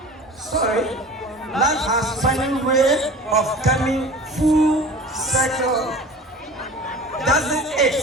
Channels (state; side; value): normal; both; correlation 0.39